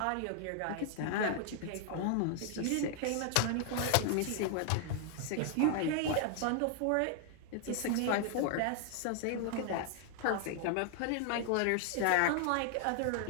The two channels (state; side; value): different; both; correlation 0.00